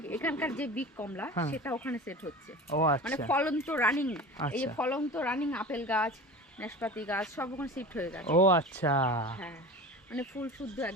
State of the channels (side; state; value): both; normal; correlation 0.34